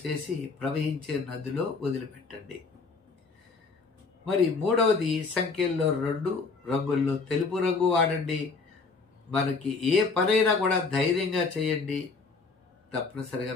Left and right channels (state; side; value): quieter; right; 4.4 dB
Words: చేసి ప్రవహించే నదిలో వదిలిపెట్టండి. మరి మూడవది, సంఖ్యల్లో 2 రంగుల్లో తెలుపు రంగు వాడండి. మనకి ఏ పనైనా కూడా ధైర్యంగా చేయండి, తప్పనిసరిగా